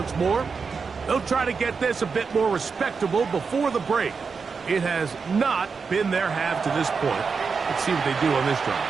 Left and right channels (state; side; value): quieter; left; 5.3 dB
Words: more. They'll try to get this a bit more respectable before the break. It has not been their half to this point. Let's see what they do on this